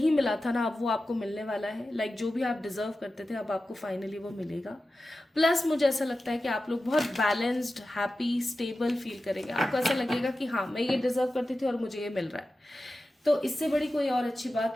मिला था ना, अब वो आपको मिलने वाला है। लाइक जो भी आप डिजर्व करते थे अब आपको फाइनली वो मिलेगा। प्लस मुझे ऐसा लगता है कि आप लोग बहुत बैलेंस्ड, हैप्पी, स्टेबल फील करेंगे। आपको ऐसा लगेगा कि हाँ मैं ये डिजर्व करती थी और मुझे ये मिल रहा है, तो इससे बड़ी कोई और अच्छी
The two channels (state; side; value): normal; both; correlation 0.93